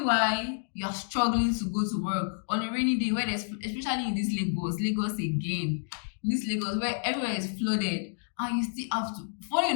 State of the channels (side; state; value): right; silent; digital silence